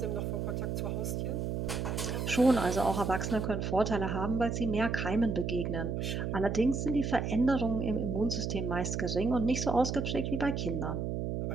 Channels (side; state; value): right; noise; hum, 2 dB below the sound